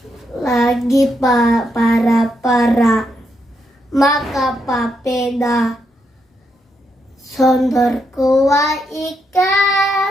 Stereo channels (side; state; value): both; normal; correlation 0.80